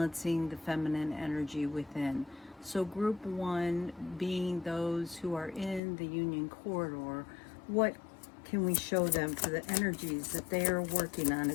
the feminine energy within. So group 1 being those who are in the union corridor, what can we show them for the energies that they are working on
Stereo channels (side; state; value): right; drops out; at 5.8 s